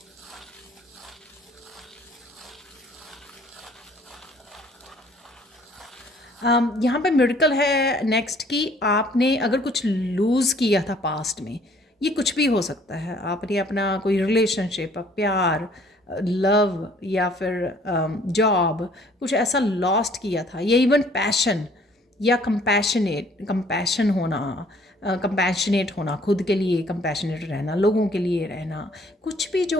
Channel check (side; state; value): both; normal; correlation 0.58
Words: यहाँ पे मिरेकल है नेक्स्ट कि आपने अगर कुछ लूज़ किया था पास्ट में, ये कुछ भी हो सकता है, आपने अपना कोई रिलेशनशिप, प्यार, लव, या फिर जॉब, कुछ ऐसा लॉस्ट किया था, या इवन पैशन या कंपैशन होना, कंपैशनेट होना, खुद के लिए कंपैशनेट रहना, लोगों के लिए रहना, कुछ भी